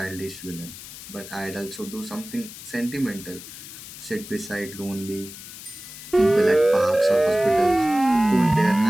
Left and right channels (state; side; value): noise; left; hiss, 14 dB below the sound